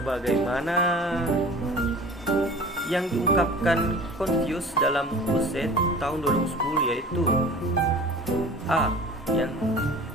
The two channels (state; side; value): normal; both; correlation 0.42